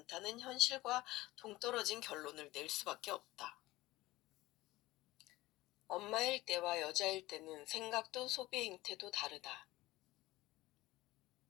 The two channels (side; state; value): right; quieter; 18.4 dB